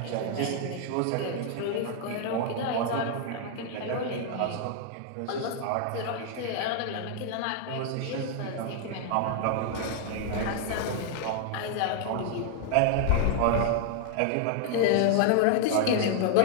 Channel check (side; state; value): both; different; correlation 0.00